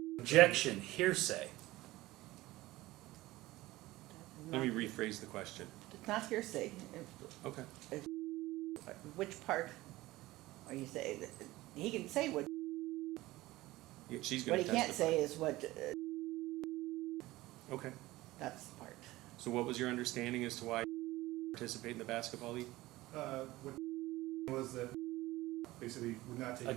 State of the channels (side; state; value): left; quieter; 18.3 dB